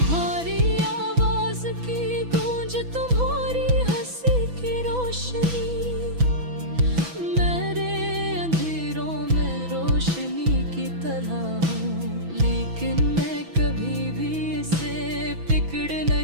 आवाज की गूंज, तुम्हारी हंसी की रोशनी मेरे अंधेरों में रोशनी की तरह हूँ। लेकिन मैं कभी भी इसे पकड़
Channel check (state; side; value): late; left; 6.1 ms